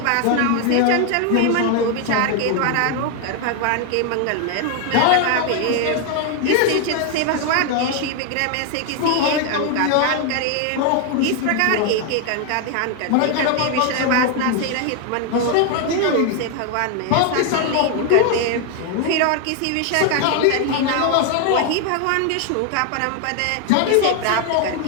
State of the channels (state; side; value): different; both; correlation 0.01